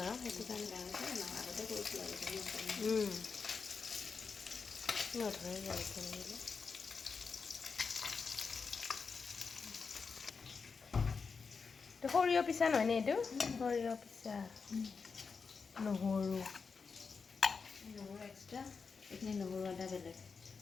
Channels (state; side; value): quieter; right; 5.2 dB